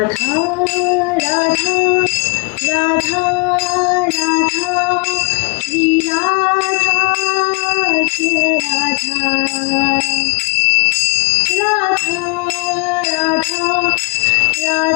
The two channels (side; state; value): right; quieter; 30.5 dB